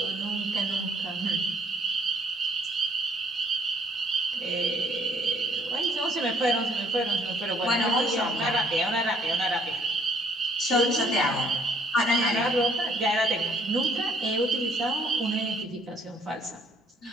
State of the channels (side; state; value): both; normal; correlation 0.64